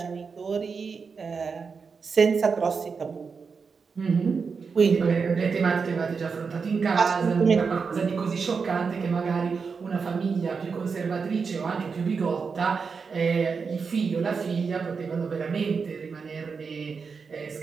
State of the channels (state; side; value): quieter; left; 5.3 dB